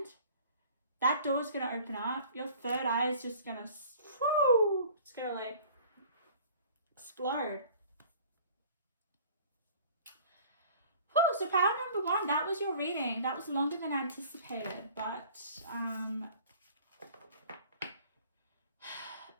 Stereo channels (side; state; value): both; inverted; correlation -0.48